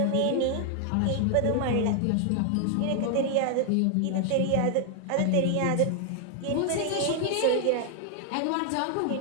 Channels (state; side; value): different; both; correlation 0.00